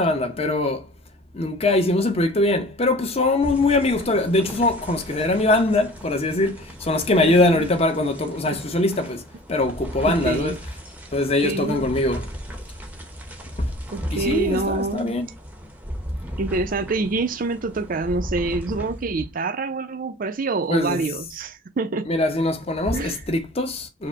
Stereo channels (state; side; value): normal; both; correlation 0.43